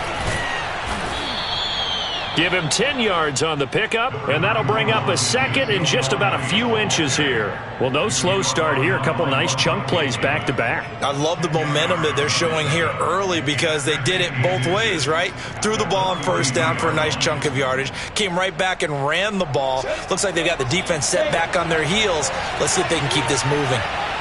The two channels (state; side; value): identical; both; correlation 1.00